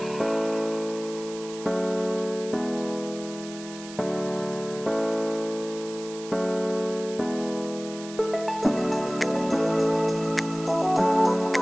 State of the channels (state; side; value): noise; right; hiss, 15 dB below the sound